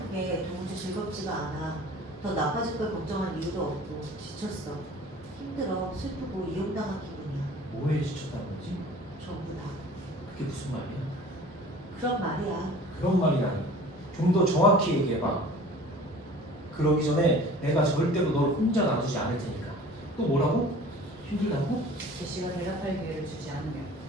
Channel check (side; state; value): both; normal; correlation 0.45